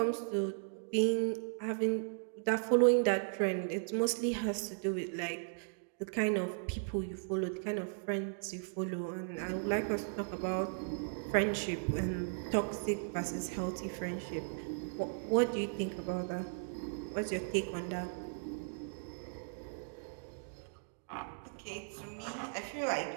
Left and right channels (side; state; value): left; silent; digital silence